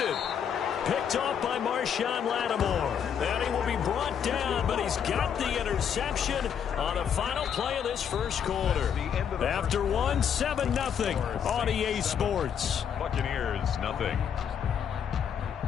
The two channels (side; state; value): right; quieter; 8.1 dB